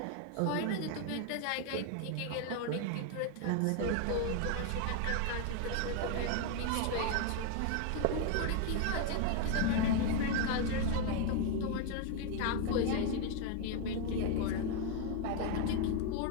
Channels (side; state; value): both; different; correlation 0.01